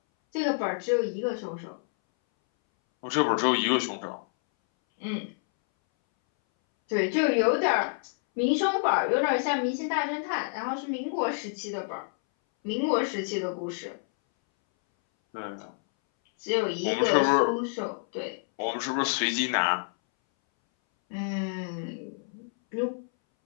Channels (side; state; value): right; silent; 59 dB below the other